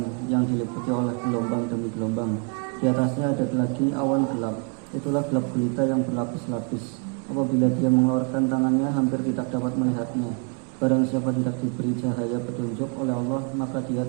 yang diliputi oleh gelombang demi gelombang. Di atasnya ada lagi awan gelap. Itulah gelap gulita yang berlapis-lapis. Apabila dia mengeluarkan tangannya, hampir tidak dapat melihatnya. Barang siapa tidak diberi cahaya petunjuk oleh Allah, maka dia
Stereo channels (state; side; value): quieter; left; 36.9 dB